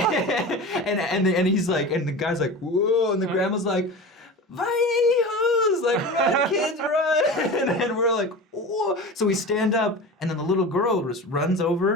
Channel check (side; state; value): both; normal; correlation 0.31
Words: he's like, and the guy's like, "Whoa!" And the grandma's like, "Vahijos!" Like, "Run, kids, run!" And we're like, "Whoa!" So we stand up, and then the little girl just runs